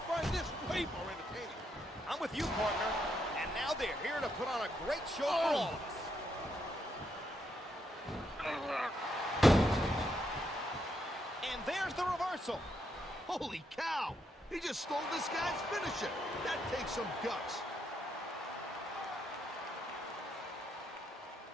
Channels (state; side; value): normal; both; correlation 0.78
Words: find this way more entertaining. I'm with you, partner. And now they're here to put on a great show for all of us. And there's the reversal. Holy cow! He just stole this guy's finisher. That takes some guts.